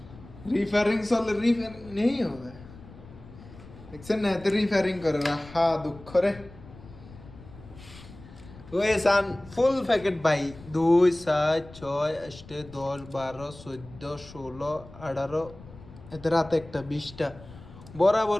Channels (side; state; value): left; noise; rumble, 19 dB below the sound